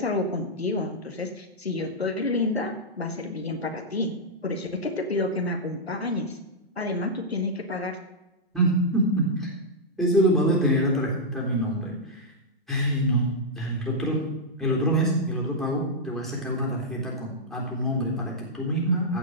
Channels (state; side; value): normal; both; correlation -0.07